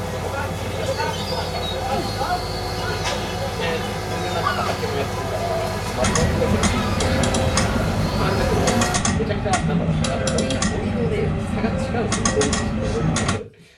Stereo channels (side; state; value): both; identical; correlation 1.00